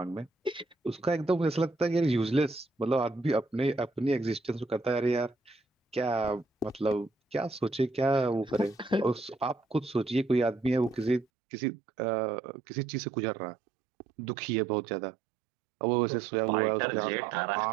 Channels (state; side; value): drops out; left; at 11.2 s